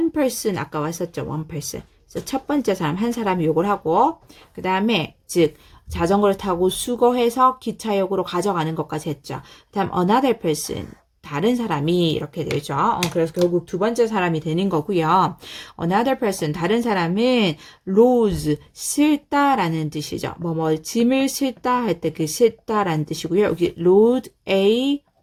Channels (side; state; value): both; identical; correlation 1.00